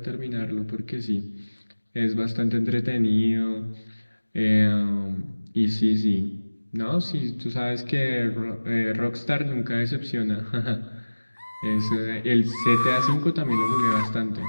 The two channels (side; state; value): both; inverted; correlation -1.00